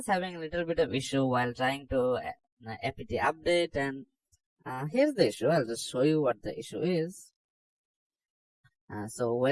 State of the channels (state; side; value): identical; both; correlation 1.00